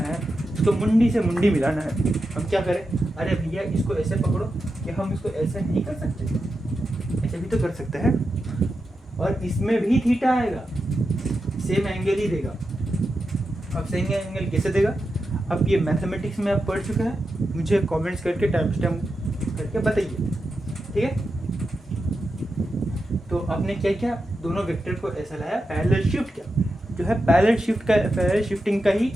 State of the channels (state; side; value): normal; both; correlation 0.89